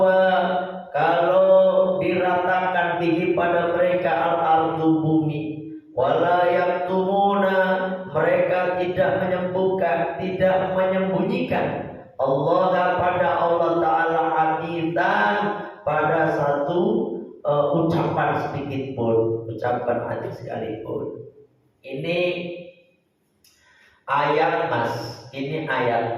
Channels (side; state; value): both; identical; correlation 1.00